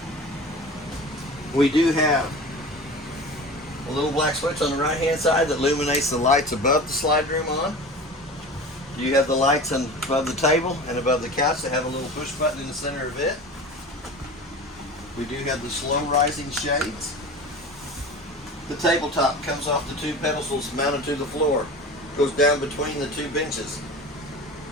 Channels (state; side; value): normal; both; correlation 0.34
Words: We do have a little black switch on the right hand side that illuminates the lights above the slide room on. You have the lights above the table and above the couch that have a little push button in the center of it. We do have the slow rising shades. The tabletop comes off the 2 pedestals mounted to the floor. Goes down between the 2 benches.